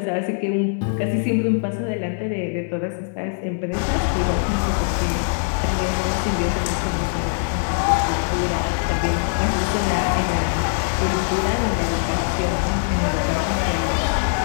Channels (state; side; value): silent; right; digital silence